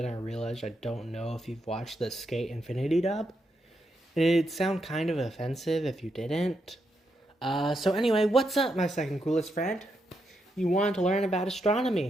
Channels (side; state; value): both; normal; correlation 0.82